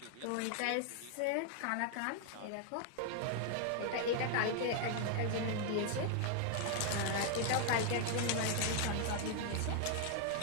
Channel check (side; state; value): both; different; correlation 0.00